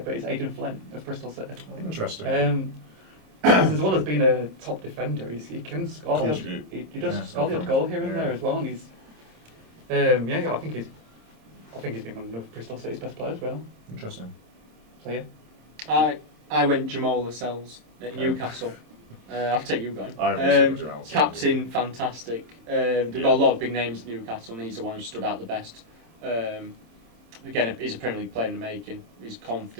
but it's Aidan Flynn of Bristol City. Interesting. Because as well as being a top defender, he can score the odd, Contribute. he does Yeah, score the odd goal here and there as well, and he's I think he's been one of Bristol City's best players, really. Interesting. So yeah. I went Jamal Lascelles at Okay. Newcastle. I'll take you going. I also got Jamal Lascelles. Captain, fantastic. They've got a lot of big names at Newcastle, and he's the one who stood out the best. Again, he's a Premier League player in the making. He's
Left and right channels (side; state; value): left; late; 26 ms